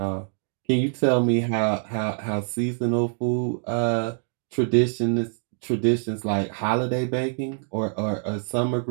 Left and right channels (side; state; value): left; silent; 62 dB below the other